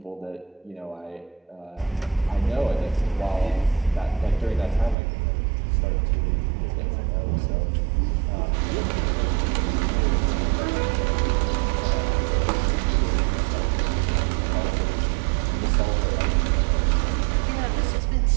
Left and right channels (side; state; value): left; drops out; at 5.0 s